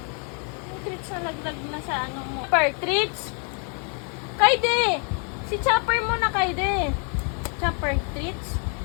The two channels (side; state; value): right; quieter; 39.7 dB